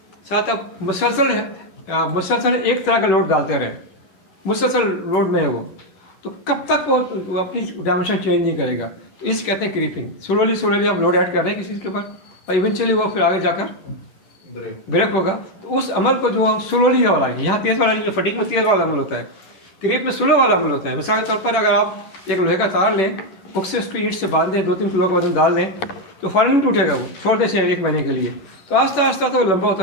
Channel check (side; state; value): right; late; 11 ms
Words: साथ आप मुसलसल एक तरह का लोड डालते रहें, मुसलसल लोड में है वो, तो कब तक वो अपनी डायमेंशन चेंज नहीं करेगा। तो इसे कहते हैं क्रीपिंग। स्लोली आप लोड ऐड कर रहे हैं किसी के ऊपर और इवेंचुअली वो फिर आगे जाकर ब्रेक होगा। तो उस अमल को जो हम स्लोली वाला है, यहाँ तेज़ वाला जो फटीक में तेज़ वाला अमल होता है, क्रीप में स्लो वाला अमल होता है। मिसाल के तौर पर अगर आप एक लोहे का तार लें, हुक से उसको ईंट से बांध दें, 2-3 किलो का वजन डाल दें, तो फ़ौरन नहीं टूटेगा, वो छोड़ दें 1 महीने के लिए, तो आस्ता आस्ता तो वो लंबा